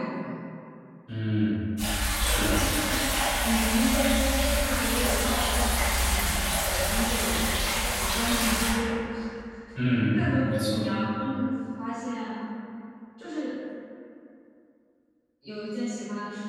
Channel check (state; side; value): identical; both; correlation 1.00